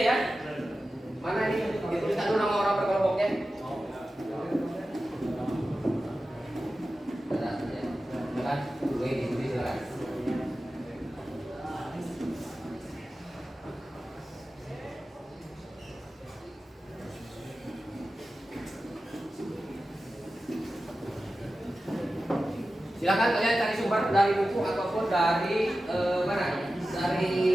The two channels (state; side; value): normal; both; correlation 0.94